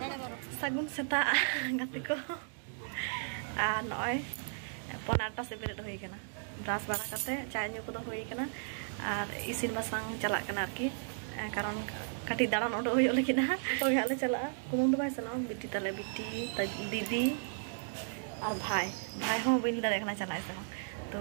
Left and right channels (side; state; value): left; silent; digital silence